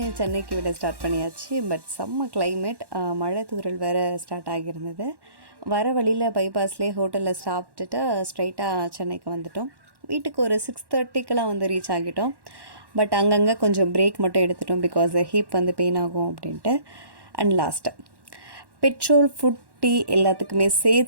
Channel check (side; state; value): left; late; 1.1 ms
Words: சென்னைக்கு விட ஸ்டார்ட் பண்ணியாச்சு. பட் செம்ம கிளைமேட், மழை தூறல் வேறு ஸ்டார்ட் ஆகியிருந்தது. வர வழியில் பைபாஸ்லேயே ஹோட்டலில் சாப்பிட்டுட்டு ஸ்ட்ரைட்டாக சென்னைக்கு வந்துட்டோம். வீட்டுக்கு ஒரு 6:30க்கெலாம் வந்து ரீச் ஆகிட்டோம். பட் அங்கங்கே கொஞ்சம் பிரேக் மட்டும் எடுத்துட்டோம், பிகாஸ் ஹீப் வந்து பெயின் ஆகும் அப்படின்ட்டு. And last petrol, food, tea எல்லாத்துக்குமே